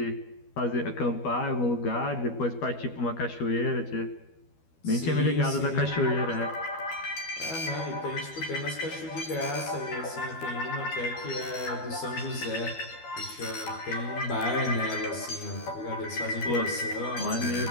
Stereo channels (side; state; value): right; late; 12 ms